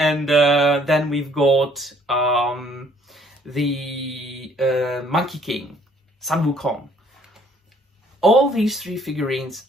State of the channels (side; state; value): both; normal; correlation 0.62